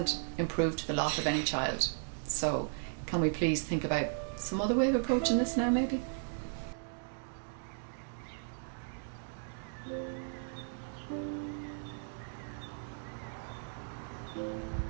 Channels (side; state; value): left; silent; digital silence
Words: improved the lot of any child. So can we please think about some other way of approaching this now, maybe?